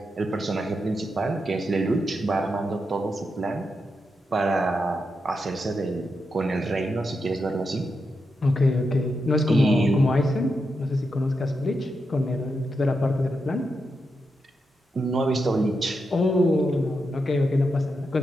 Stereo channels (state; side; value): normal; both; correlation 0.86